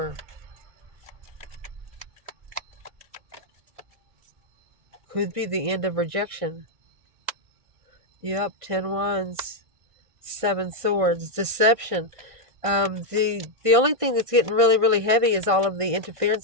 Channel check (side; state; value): left; late; 1.6 ms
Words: Could be the end of rejection. Yep, 10 Wands, 7 Swords, deception. The only thing that's getting really, really heavy is all of the